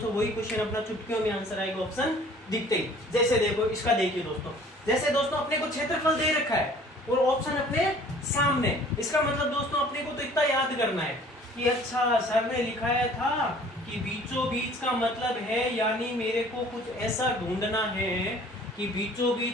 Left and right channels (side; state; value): both; normal; correlation 0.52